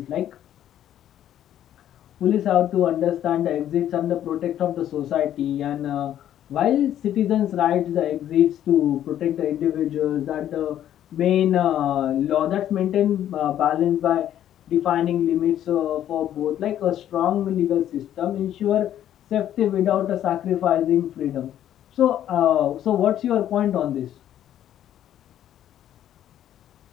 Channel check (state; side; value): quieter; right; 11.3 dB